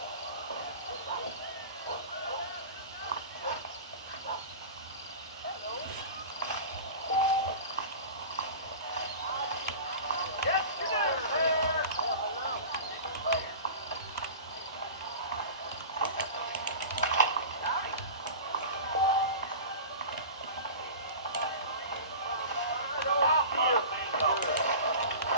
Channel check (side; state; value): both; inverted; correlation -0.34